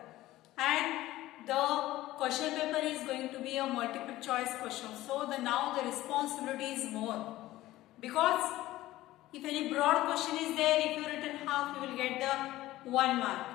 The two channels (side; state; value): right; quieter; 16.2 dB